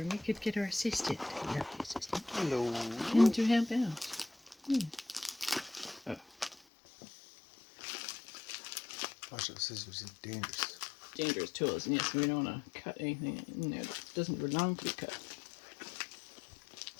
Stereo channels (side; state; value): right; drops out; at 6.6 s